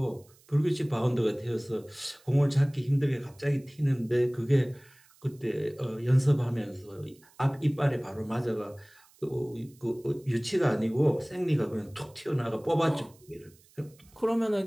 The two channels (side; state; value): right; noise; hiss, 29 dB below the sound